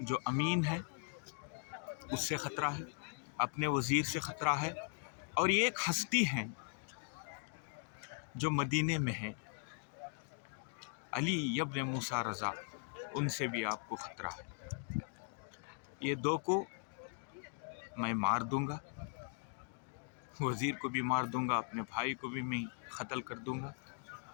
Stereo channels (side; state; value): right; silent; 51 dB below the other